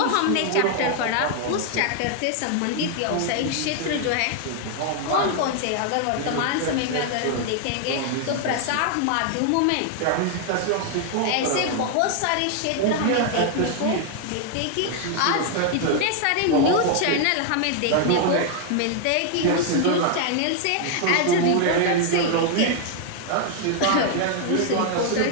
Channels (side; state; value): both; different; correlation 0.00